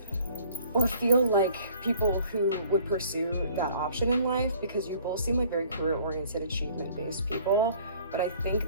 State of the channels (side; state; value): both; inverted; correlation -0.54